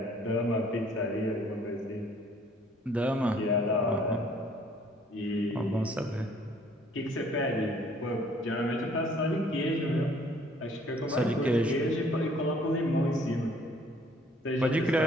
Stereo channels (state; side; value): normal; both; correlation 0.59